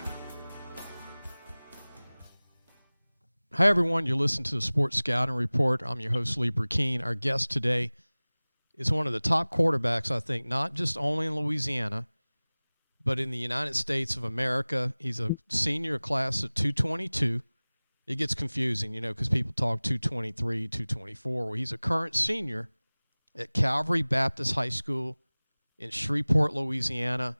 Hi, everyone. You're listening to the Sports Scouting Report. I'm your host, Lee Brecheen. Our guest today is one of the top quarterbacks, I think, not just only in Louisiana, but in the United States of America. He's a senior class of 222. It gets confusing, because people talk 223, 224. Well, he's a current senior at Calvary Baptist High School in Shreveport, Louisiana.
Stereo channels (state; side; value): inverted; both; correlation -0.99